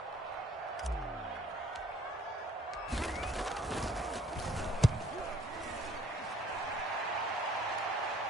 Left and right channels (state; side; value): normal; both; correlation 0.60